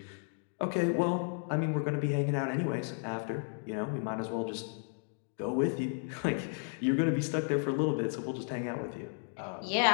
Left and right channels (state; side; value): silent; right; 56 dB below the other